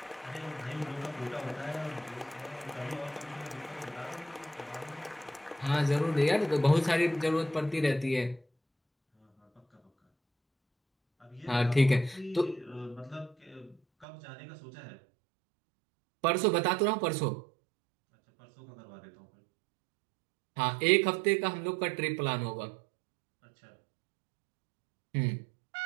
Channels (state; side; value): drops out; left; at 14.1 s